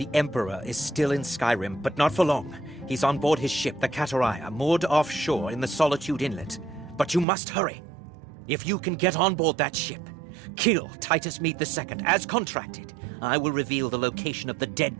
Emperor is still in Skyrim, but not for long. He's on board his ship, the Kataraya, moored offshore in the Solitude Inlet. But you must hurry. If you can get on board that ship, kill Titus Mead II, as contracted, I will reveal the location of the dead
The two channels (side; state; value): left; drops out; at 7.2 s